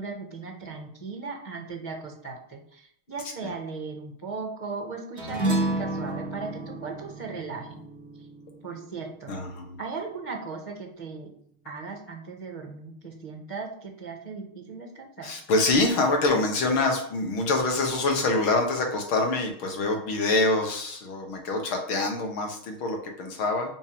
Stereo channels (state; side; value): late; right; 6.4 ms